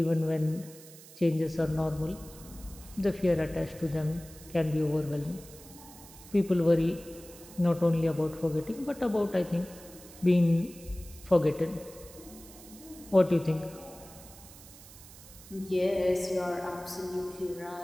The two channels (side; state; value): right; noise; hiss, 19 dB below the sound